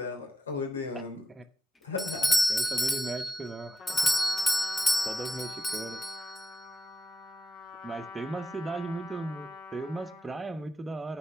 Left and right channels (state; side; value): normal; both; correlation 0.87